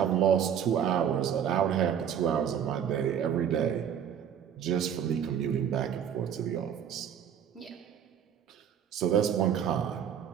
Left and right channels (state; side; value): quieter; left; 8.8 dB